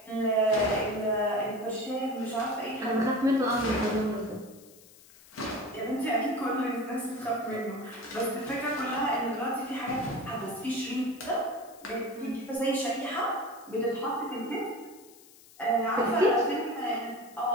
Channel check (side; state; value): left; noise; hiss, 23 dB below the sound